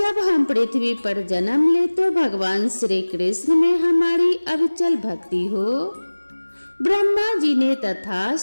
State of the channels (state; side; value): inverted; both; correlation -1.00